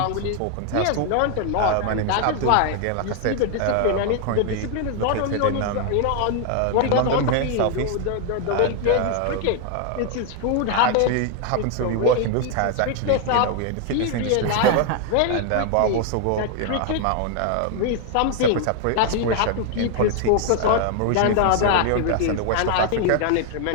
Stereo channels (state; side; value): different; both; correlation 0.00